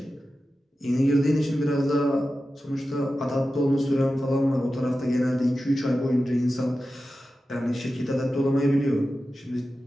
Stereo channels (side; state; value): both; normal; correlation 0.93